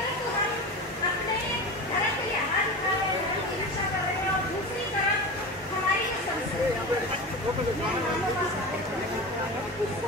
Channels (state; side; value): normal; both; correlation 0.28